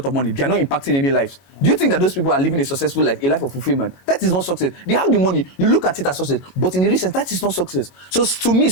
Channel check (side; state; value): right; late; 22 ms